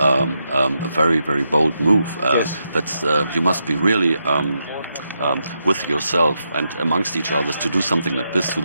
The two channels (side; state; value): both; inverted; correlation -0.83